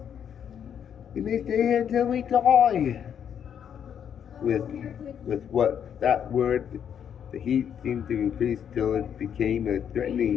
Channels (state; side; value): quieter; right; 8.5 dB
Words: You may stay here until we die. With what that word, the heat seemed to increase till it became a